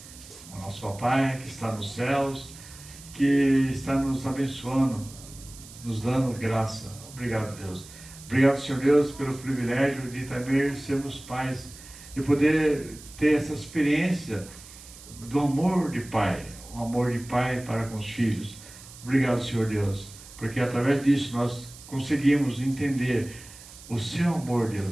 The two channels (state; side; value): noise; right; hiss, 18 dB below the sound